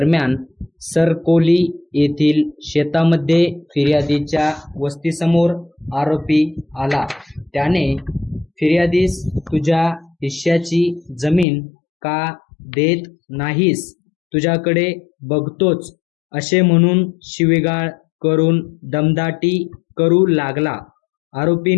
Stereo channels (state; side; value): drops out; right; at 11.5 s